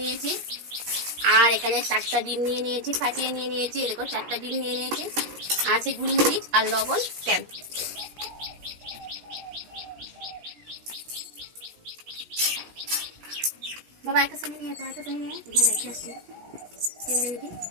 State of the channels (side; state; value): left; late; 17 ms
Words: নিয়েছি, আর এখানে 4টা ডিম নিয়ে নিয়েছি, ফাটিয়ে নিয়ে নিয়েছি। দেখো 4টা ডিম নিয়ে নিয়েছি, আছে গোলমরিচ আর লবণ, তেল। বাবা একটা সামনে নিয়ে একটা সামনে নিয়ে দেখে আসছি।